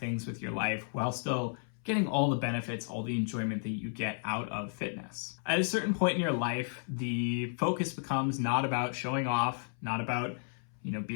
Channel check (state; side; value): silent; right; 56 dB below the other